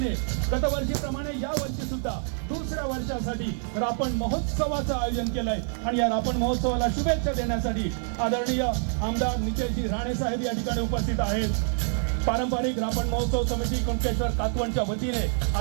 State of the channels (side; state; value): left; silent; 57 dB below the other